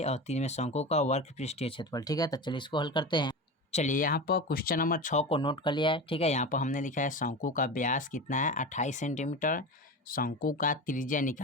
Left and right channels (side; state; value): both; normal; correlation 0.26